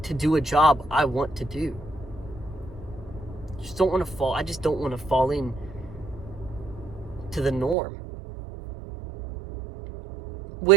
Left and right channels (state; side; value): drops out; left; at 7.8 s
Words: do a job I want to do. I just don't want to fall in to the norm,